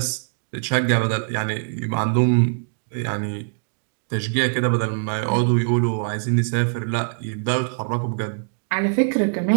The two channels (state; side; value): silent; left; digital silence